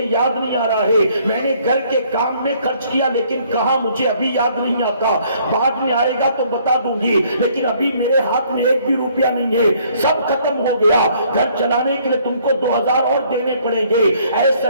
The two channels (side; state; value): both; inverted; correlation -0.63